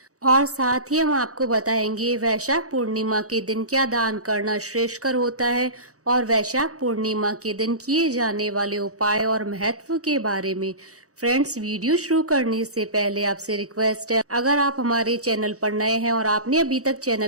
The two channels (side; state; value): left; late; 0.66 ms